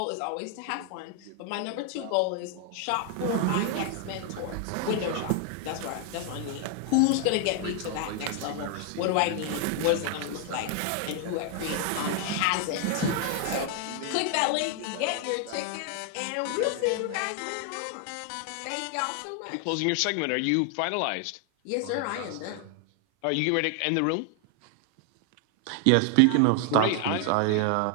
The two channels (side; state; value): both; different; correlation 0.00